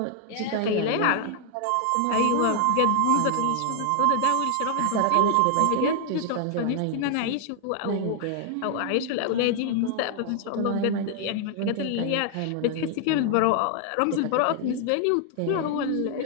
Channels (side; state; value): both; different; correlation 0.00